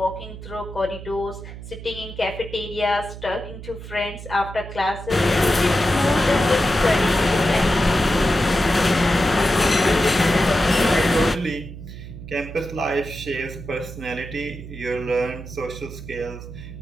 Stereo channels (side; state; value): right; noise; hum, 12 dB below the sound